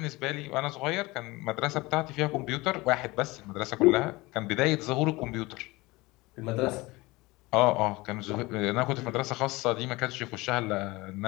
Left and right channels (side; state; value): right; quieter; 22.2 dB